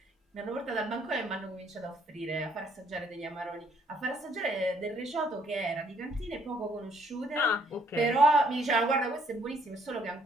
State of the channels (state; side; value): normal; both; correlation 0.66